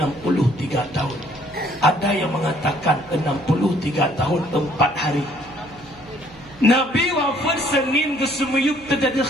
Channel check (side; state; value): right; noise; hum, 21 dB below the sound